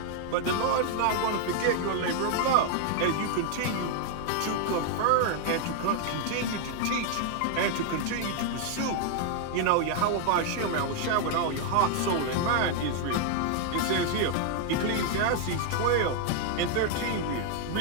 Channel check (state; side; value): different; both; correlation 0.00